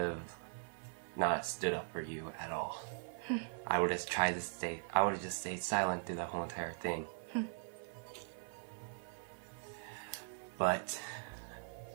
not stood up for you at all. I would have just stayed silent through the whole entire thing. But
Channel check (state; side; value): silent; left; 51 dB below the other